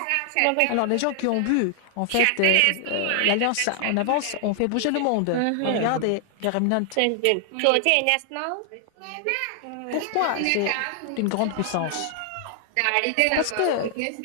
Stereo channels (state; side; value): different; both; correlation 0.00